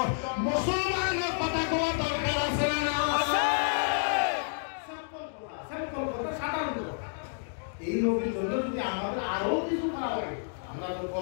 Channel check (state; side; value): silent; right; digital silence